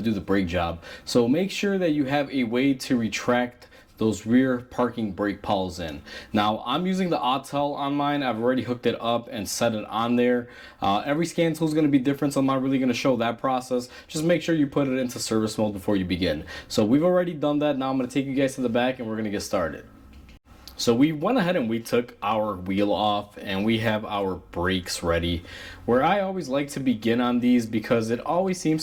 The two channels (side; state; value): both; identical; correlation 1.00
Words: do the brake job. So make sure that you have a way to retract those rear parking brake pawls in. Now I'm using the Autel on mine. I've already hooked it up and set it on there. Every scan tool is going to be different, so I'm not really going to show that process. Just make sure you put it into service mode before you begin. So we've already done that. Now I'm going to take you guys to the back and we're going to get started. So we went ahead and we took our wheel off and we have our brakes ready. Where I always like to begin on these, because it always